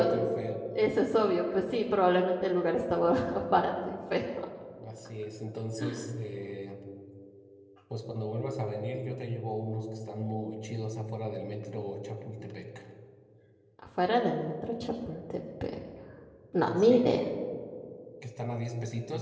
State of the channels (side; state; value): both; identical; correlation 1.00